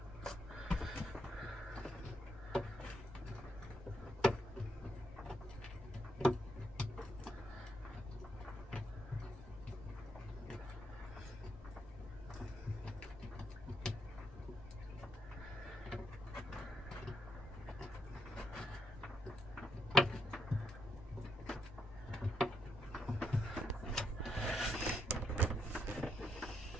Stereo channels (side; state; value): both; normal; correlation 0.77